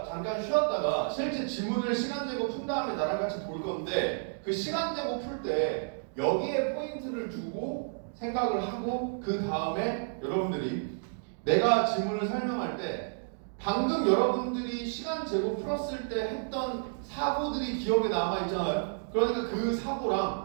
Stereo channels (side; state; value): left; silent; digital silence